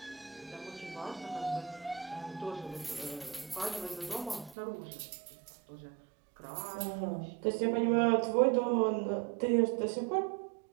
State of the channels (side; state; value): left; drops out; at 4.5 s